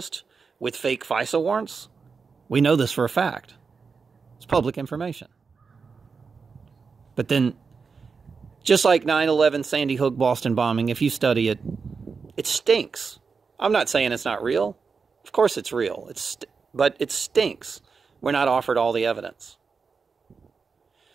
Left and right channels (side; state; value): left; quieter; 5.2 dB